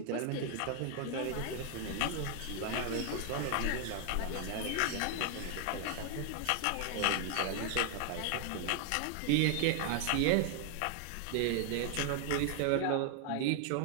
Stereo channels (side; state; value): both; different; correlation 0.00